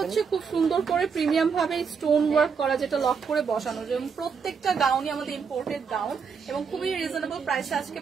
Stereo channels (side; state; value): left; quieter; 6.0 dB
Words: খুব সুন্দর করে প্রিমিয়াম ভাবে স্টোন ওয়ার্ক করা, যেটা লক করে বসানো। যেমন প্রত্যেকটা গাউনই আমাদের ইম্পোর্টেড গাউন এবং খুবই রিজনেবল প্রাইসে আজকে